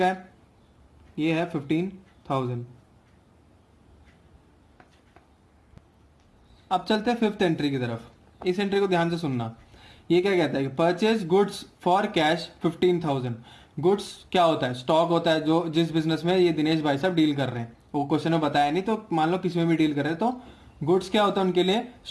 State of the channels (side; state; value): both; identical; correlation 1.00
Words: है, ये है 15,000। अब चलते हैं फिफ्थ एंट्री की तरफ। इस एंट्री को ध्यान से सुनना। ये क्या कहता है कि purchase goods for cash 15,000। Goods क्या होता है, स्टॉक होता है, जो जिस बिजनेस में ये दिनेश भाई साहब डील कर रहे हैं। वो क्वेश्चन में बताया नहीं, तो मान लो किसी में भी डील कर रहे हैं, तो गुड्स क्या होता है उनके लिए,